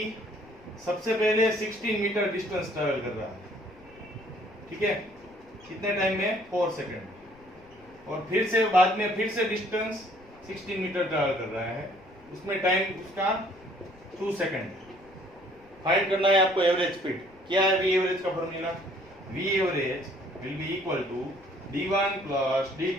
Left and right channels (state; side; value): noise; left; rumble, 27 dB below the sound